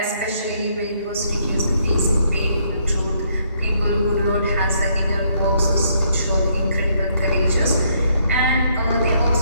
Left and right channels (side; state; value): both; inverted; correlation -0.71